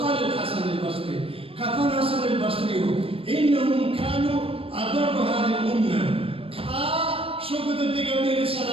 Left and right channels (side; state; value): left; late; 0.27 ms